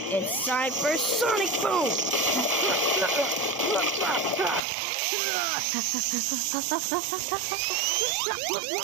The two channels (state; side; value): drops out; left; at 4.7 s